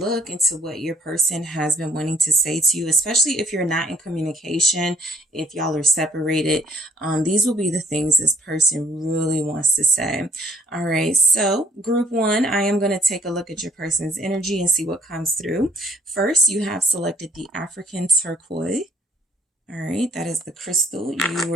into what your person has been wanting to say to you, especially if you're not in communication, if y'all are separated. These will be the things this person really wants to say. All right, so Group 1, I am going to take a look at your person's energy and see what comes through. First, you have selected the African turquoise. All right, that is the crystal you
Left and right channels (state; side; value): normal; both; correlation 0.63